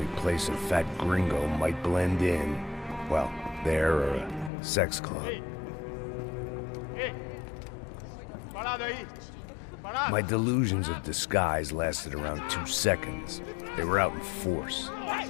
place a fat gringo might blend in. Well, there or a sex club. Ei! Parado aí! My delusions of disguise lasted around 2 seconds. They were out in force.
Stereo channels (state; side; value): drops out; right; at 4.5 s